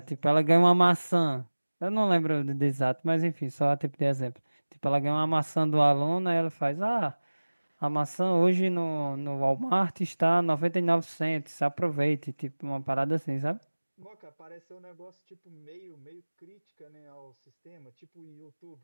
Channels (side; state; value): both; inverted; correlation -1.00